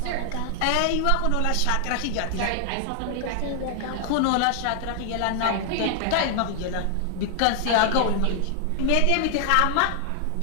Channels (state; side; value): different; both; correlation 0.00